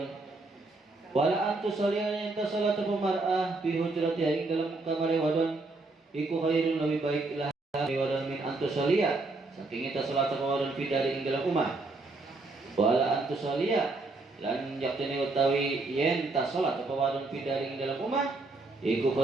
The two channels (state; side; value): quieter; left; 3.3 dB